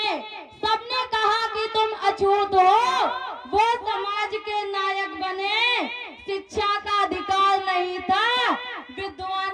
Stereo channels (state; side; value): identical; both; correlation 1.00